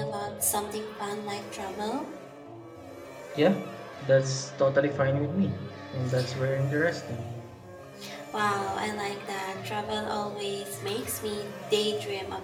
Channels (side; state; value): both; identical; correlation 1.00